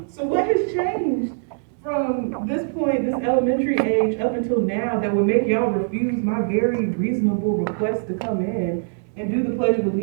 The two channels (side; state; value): left; silent; digital silence